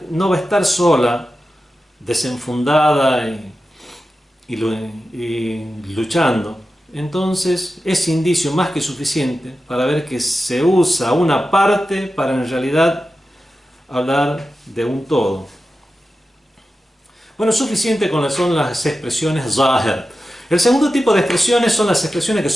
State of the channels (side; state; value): both; normal; correlation 0.92